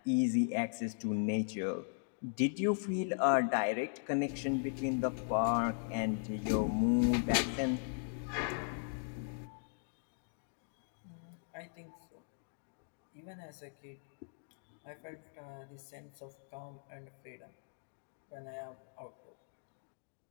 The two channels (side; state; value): right; silent; digital silence